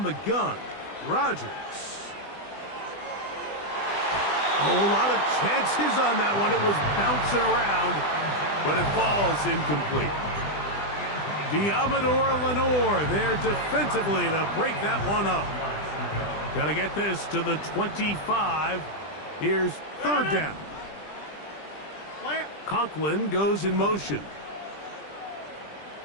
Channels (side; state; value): right; late; 20 ms